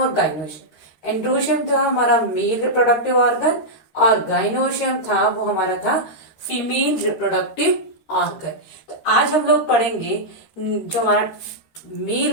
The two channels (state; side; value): late; right; 13 ms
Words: गाइनोशियम। एंड्रोशियम था हमारा मेल रिप्रोडक्टिव ऑर्गन और गाइनोशियम था वो हमारा था फीमेल रिप्रोडक्टिव ऑर्गन। तो आज हम लोग पढ़ेंगे जो हमारा